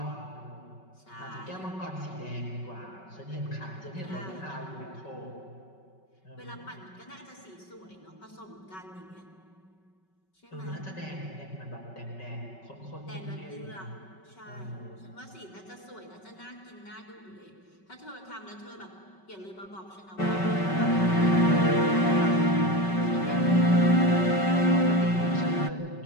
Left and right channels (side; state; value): right; late; 5.3 ms